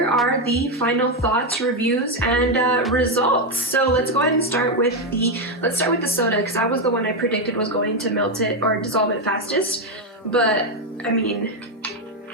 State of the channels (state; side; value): normal; both; correlation 0.06